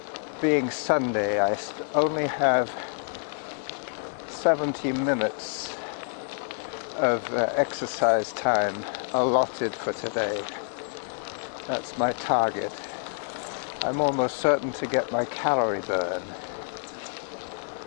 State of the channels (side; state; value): right; silent; digital silence